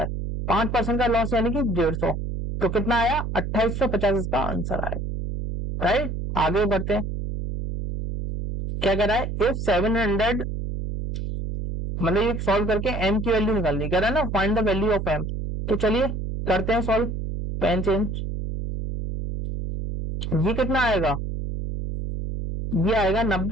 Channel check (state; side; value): noise; right; hum, 4 dB below the sound